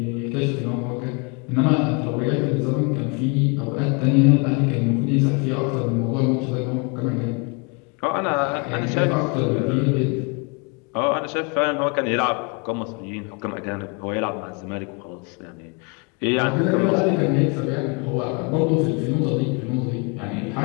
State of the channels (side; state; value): right; quieter; 32.9 dB